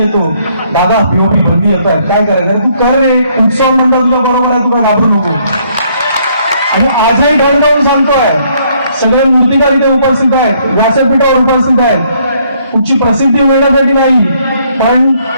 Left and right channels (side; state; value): both; inverted; correlation -0.68